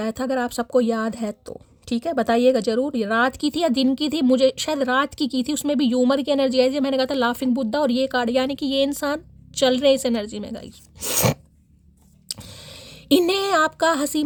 था, अगर आप सबको याद है तो ठीक है बताइएगा जरूर, ये रात की थी या दिन की थी, मुझे शायद रात की थी, उसमें भी ह्यूमर की एनर्जी आई थी। मैंने कहा था लाफिंग बुद्धा, और ये कार्ड यानी कि ये इंसान चल रहे इस एनर्जी में गाइस। इन्हें आपका हंसी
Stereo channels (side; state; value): both; identical; correlation 1.00